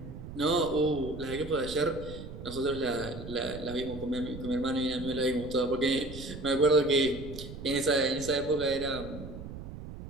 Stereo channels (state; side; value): noise; right; rumble, 11 dB below the sound